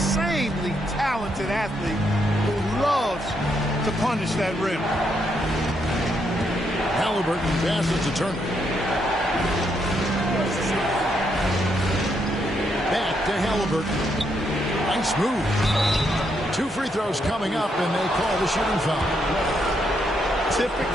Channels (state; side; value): normal; both; correlation 0.77